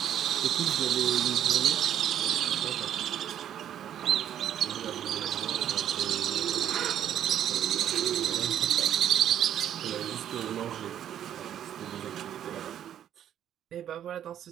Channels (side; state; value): left; quieter; 10.3 dB